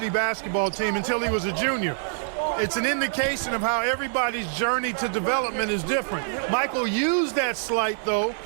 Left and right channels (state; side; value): silent; left; digital silence